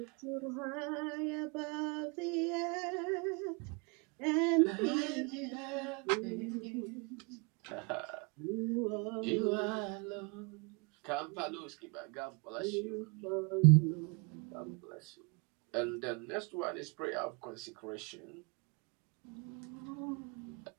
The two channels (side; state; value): left; quieter; 32.2 dB